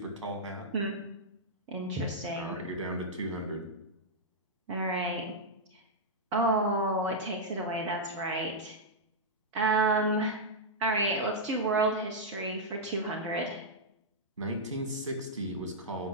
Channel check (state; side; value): normal; both; correlation -0.07